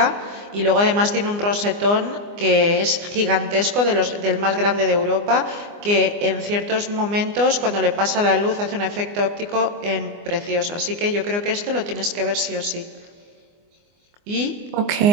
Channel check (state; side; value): late; left; 24 ms